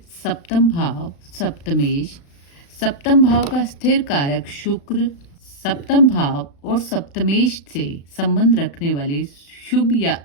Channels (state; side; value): late; right; 35 ms